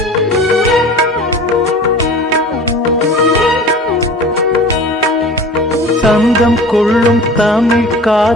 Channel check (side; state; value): both; normal; correlation 0.40